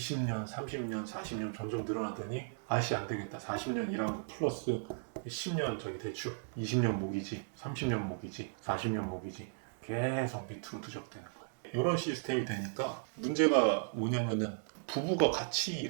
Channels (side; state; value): left; silent; digital silence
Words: 30년, 40년 점점 늘어나더니 아씨 안 되겠다. 40년 일한 거 플러스 10년 저기 대출, 20년 모기지, 30년 모기지, 40년 모기지, 계속 밑으로 누적되는 거예요. 이런 시스템이 되니까 문제가 뭐냐면은 부부가 같이